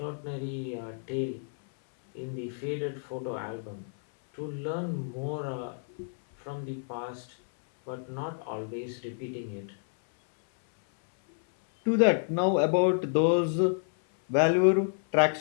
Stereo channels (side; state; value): right; silent; 58 dB below the other